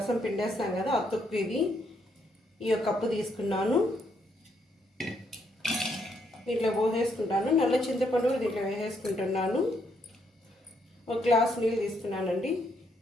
పిండేస్తాం కదా, ఆ తొక్కు ఇది. ఈ కప్పు తీసుకున్నాను, దీంట్లో పోసేసుకుంటాను. నల్ల చింతపండు దీంట్లో వేసేసుకుంటున్నాను. ఒక గ్లాస్ నీళ్ళు తీసుకున్నానండి.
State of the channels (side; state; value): both; normal; correlation 0.74